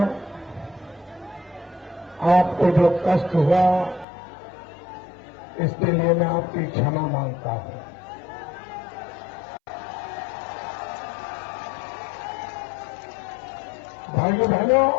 आपको जो कष्ट हुआ, इसके लिए मैं आपकी क्षमा मांगता हूं। भाइयों बहनों,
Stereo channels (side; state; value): right; drops out; at 4.0 s